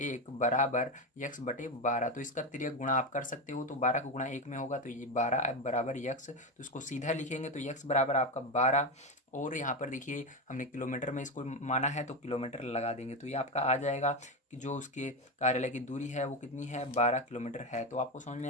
बराबर यक्स बटे 12। तो इसका तिर्यक गुणा आप कर सकते हो, तो 12 का गुणा 1 में होगा, तो ये 12 बराबर यक्स, तो इसको सीधा लिखेंगे, तो यक्स बराबर आपका 12। और यहाँ पर देखिए हमने किलोमीटर में इसको माना है, तो किलोमीटर लगा देंगे, तो ये आपका आ जाएगा कि जो उसके कार्यालय की दूरी है वो कितनी है, 12 किलोमीटर है। तो आपको समझ में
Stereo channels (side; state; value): both; normal; correlation 0.14